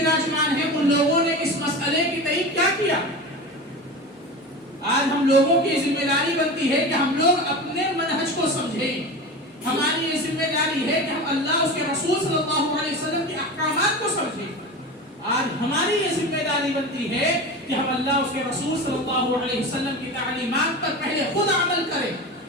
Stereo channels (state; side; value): normal; both; correlation 0.28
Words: ہیں، ان لوگوں نے اس مسئلے کی تئیں کیا کیا؟ آج ہم لوگوں کی ذمہ داری بنتی ہے کہ ہم لوگ اپنے منہج کو سمجھیں۔ ہماری یہ ذمہ داری ہے کہ ہم اللہ، اس کے رسول صلی اللہ علیہ وسلم کے احکامات کو سمجھیں۔ آج ہماری یہ ذمہ داری بنتی ہے کہ ہم اللہ، اس کے رسول صلی اللہ علیہ وسلم کی تعلیمات پر پہلے خود عمل کریں